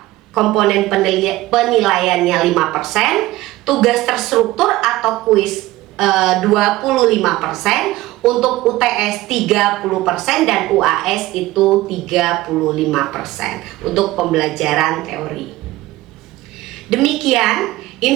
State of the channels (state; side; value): quieter; left; 17.7 dB